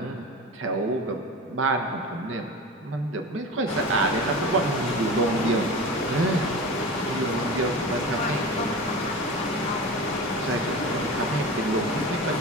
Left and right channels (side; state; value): both; normal; correlation 0.31